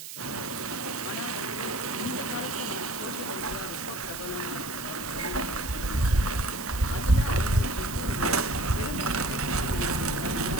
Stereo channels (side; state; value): right; noise; hiss, 10 dB below the sound